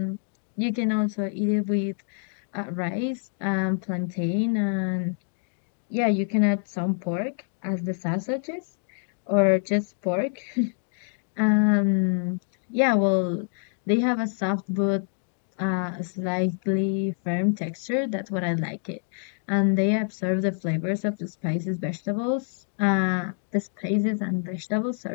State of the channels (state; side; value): silent; right; 61 dB below the other